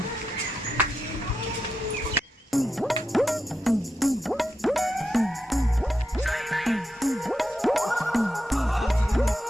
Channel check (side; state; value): both; normal; correlation 0.87